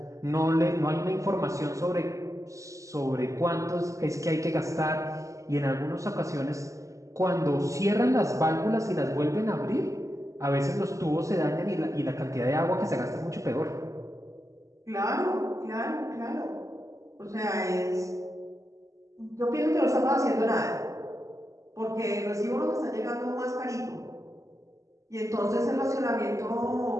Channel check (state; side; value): late; left; 0.16 ms